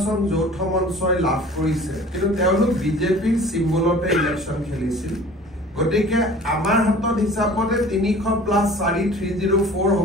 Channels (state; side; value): normal; both; correlation 0.46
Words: যৌথ মঞ্চই লাভ কৰিছে, কিন্তু তেওঁলোক বিজেপিৰ চিম্বলতে ইলেকশ্যন খেলিছিল। গতিকে আমাৰ হাতত হিচাপতে ৩০০ + ৪ ৩০৪